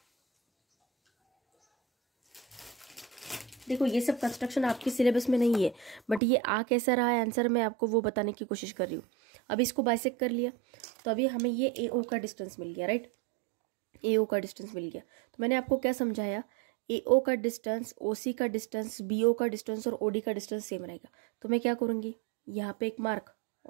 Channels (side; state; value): left; drops out; at 6.2 s